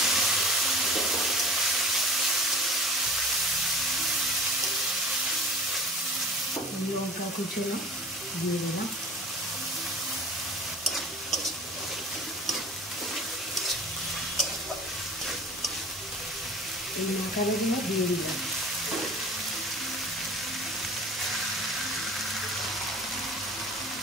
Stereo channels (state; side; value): normal; both; correlation 0.41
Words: লঙ্কা কুচনো দিয়ে দিলাম, এই মাখানোগুলো দিয়ে দিলাম।